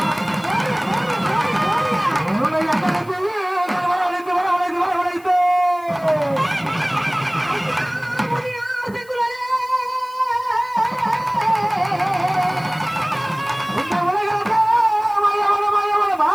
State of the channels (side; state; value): left; noise; hiss, 26 dB below the sound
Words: உன்னை அடக்கி வரவழைத்து வரவழைத்து வரவழைத்து இந்த உலகத்தை மயவன மயவன